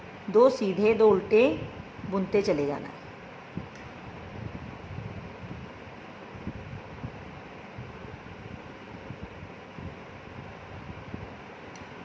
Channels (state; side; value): identical; both; correlation 1.00